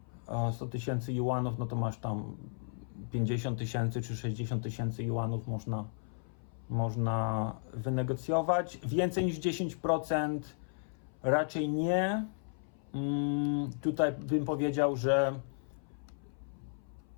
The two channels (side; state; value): right; silent; 55 dB below the other